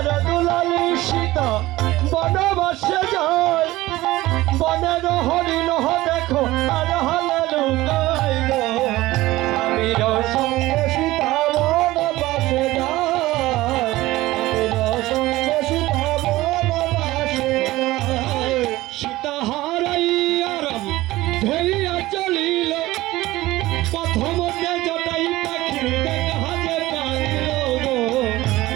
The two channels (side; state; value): left; quieter; 17.8 dB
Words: দুলালী সীতা বনবাসে যায় বনের হরিণ দেখো আর হলে লুকাই গো স্বামীর সঙ্গে সীতা বনবাসে যায় স্বামীর সঙ্গে সীতা বনবাসে যায় সীতা হারাইয়া রাম ধরিয়া চলিল প্রথম জটাই পাখি দেখা যে কাঁদিল গো